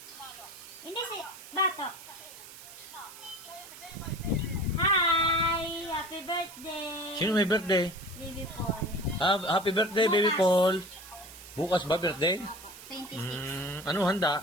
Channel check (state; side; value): noise; right; hiss, 17 dB below the sound